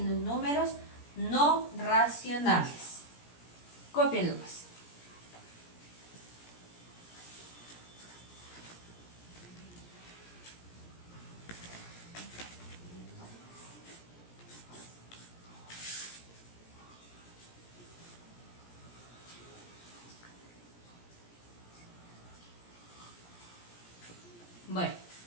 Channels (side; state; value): right; late; 17 ms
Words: los números no racionales. Cópienlo pues. Bueno,